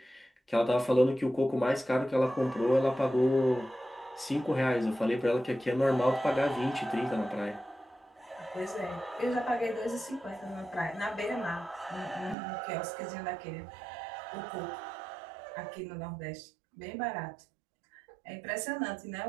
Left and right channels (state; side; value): drops out; left; at 12.4 s